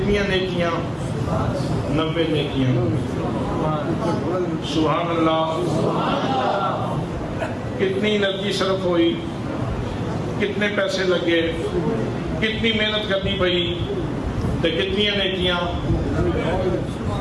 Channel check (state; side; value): identical; both; correlation 1.00